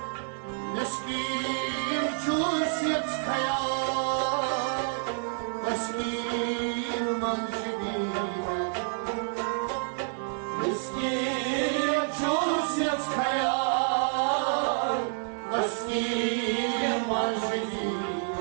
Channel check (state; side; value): silent; left; 59 dB below the other